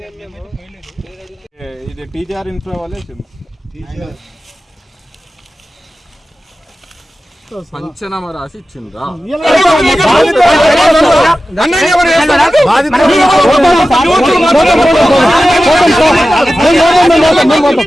ఇది టీజీఆర్ ఇన్ఫ్రా వాళ్ళే పంచనామా రాసి ఇచ్చిండ్రా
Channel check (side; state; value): both; normal; correlation 0.94